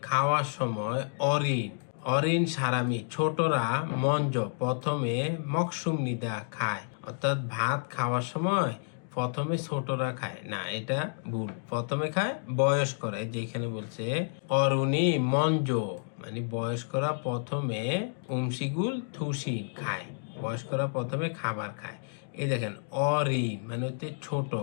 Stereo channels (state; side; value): silent; right; digital silence